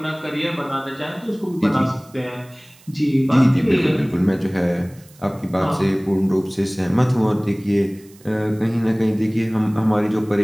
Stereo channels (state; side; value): noise; right; hiss, 27 dB below the sound